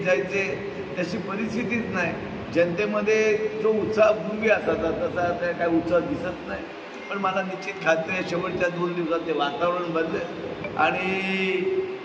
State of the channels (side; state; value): both; identical; correlation 1.00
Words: जायचे, तशी परिस्थितीच नाही. जनतेमध्ये जो उत्साह पूर्वी असायचा तसा आता काय उत्साह दिसत नाही. पण मला निश्चित खात्री आहे शेवटच्या 2 दिवसात ते वातावरण बदलेल आणि